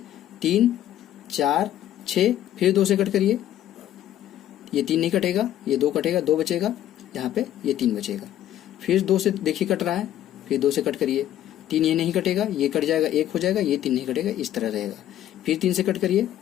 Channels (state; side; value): quieter; right; 12.1 dB